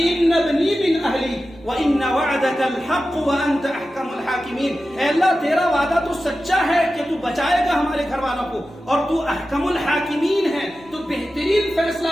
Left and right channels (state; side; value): normal; both; correlation 0.93